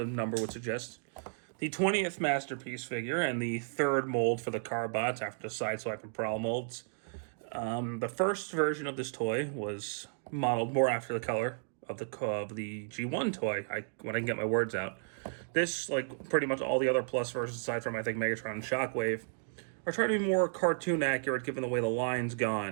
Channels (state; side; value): silent; left; digital silence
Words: number would suggest, the 20th masterpiece figure and the third mold for the Carbots after the Sideswipe and Prowl molds. The first version of this toy was modeled more after the color of the G1 toy. When I can get my words out. This, like pretty much all the other Plus versions, aside from I think Megatron and Shockwave, are trying to be more cartoon accurate given the way the line's